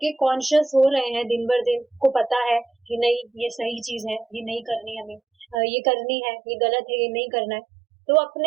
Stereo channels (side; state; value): left; drops out; at 5.6 s